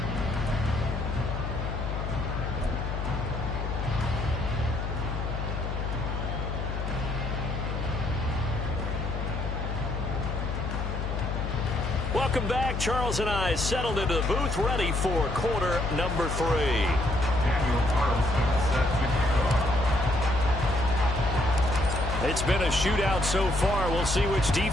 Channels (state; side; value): noise; left; hum, 3 dB below the sound